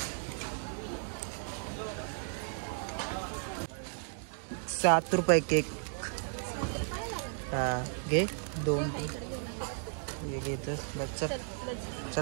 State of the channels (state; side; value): silent; left; 55 dB below the other